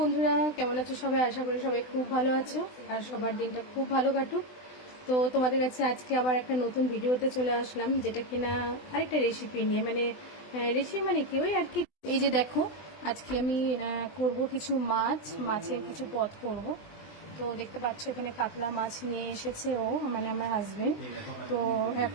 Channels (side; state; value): right; late; 20 ms